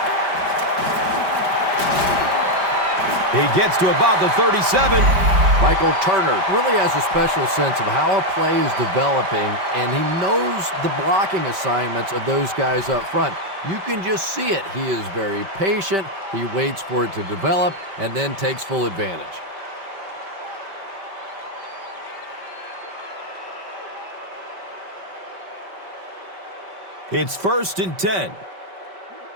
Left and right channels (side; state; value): left; late; 5.1 ms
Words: He gets to about the 37. Michael Turner really has a special sense of how a play is developing, and he knows the blocking assignments of those guys up front. You can just see it. He is very patient. He waits for it to develop and then takes full advantage. It's 1st and 10.